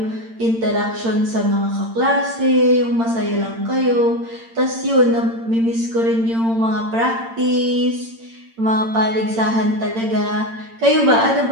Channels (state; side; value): late; left; 8.8 ms